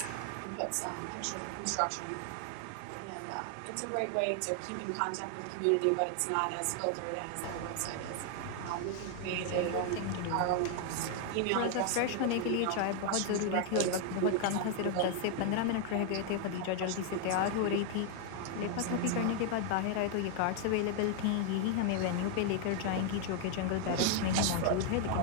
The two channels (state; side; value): different; both; correlation 0.00